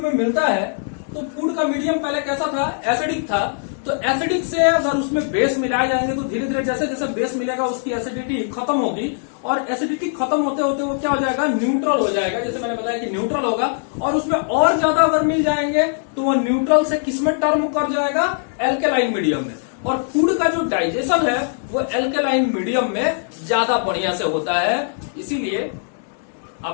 में मिलता है तो फूड का मीडियम पहले कैसा था? एसिडिक था। तो एसिडिक से अगर उसमें बेस मिलाए जाएंगे तो धीरे धीरे जैसे जैसे बेस मिलेगा उसकी एसिडिटी खत्म होगी, और एसिडिटी खत्म होते होते वो क्या हो जाएगा? न्यूट्रल हो जाएगा। जैसे मैंने बताया कि न्यूट्रल होगा, और उसमें और ज्यादा अगर मिल जाएंगे तो वो न्यूट्रल से किसमें टर्म कर जाएगा? एल्केलाइन मीडियम में। और फूड का जो डाइजेशन है वो एल्केलाइन मीडियम में ज्यादा बढ़िया से होता है। इसीलिए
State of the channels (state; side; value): silent; right; digital silence